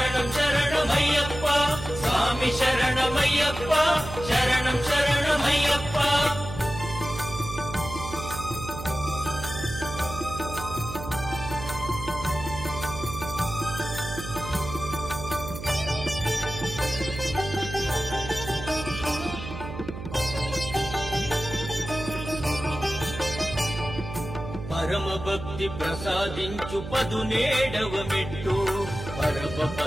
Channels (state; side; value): noise; right; hum, 9 dB below the sound